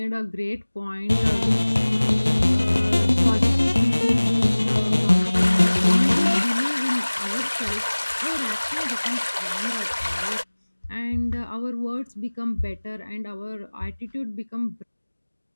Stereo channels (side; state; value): both; inverted; correlation -1.00